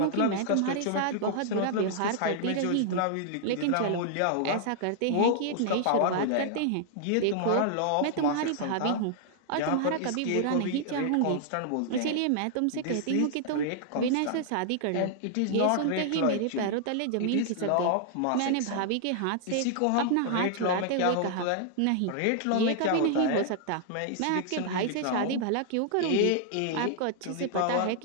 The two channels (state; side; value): different; both; correlation -0.01